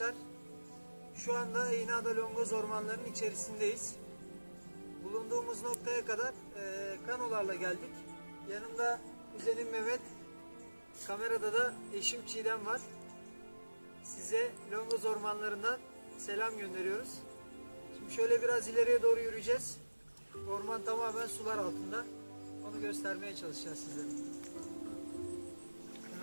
Şu anda İğneada Longoz ormanlarının içerisindeyiz. Bulunduğumuz noktaya kadar kanolarla geldik. Yanımda kuzenim Mehmet, kamerada da eşim Çiğdem var. Size Longoz ormanlarından selam gönderiyoruz. Şimdi şöyle biraz ileriye doğru yürüyeceğiz. Orman tamamen sular altında. Onu göstermeye çalışacağız sizlere.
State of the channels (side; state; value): both; inverted; correlation -1.00